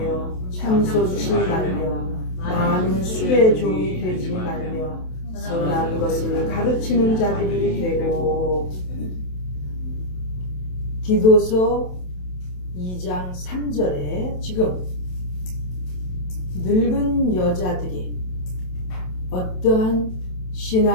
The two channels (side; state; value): right; late; 27 ms